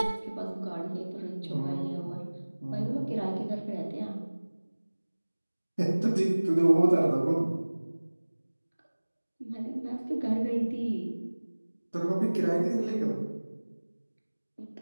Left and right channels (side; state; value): both; inverted; correlation -1.00